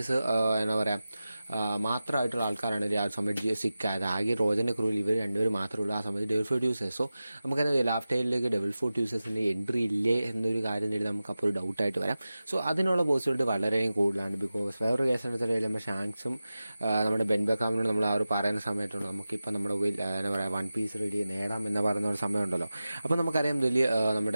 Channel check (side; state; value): both; inverted; correlation -0.95